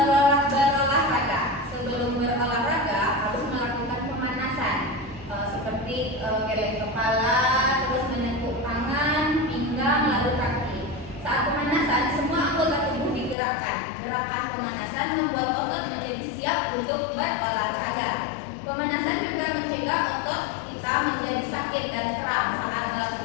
Sebelum berolahraga harus melakukan pemanasan seperti geleng kepala, terus menekuk tangan, pinggang, lalu kaki. Saat pemanasan semua anggota tubuh digerakkan. Gerakan pemanasan membuat otot menjadi siap untuk berolahraga. Pemanasan juga mencegah otot kita menjadi sakit dan kram saat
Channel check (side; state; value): right; drops out; at 13.4 s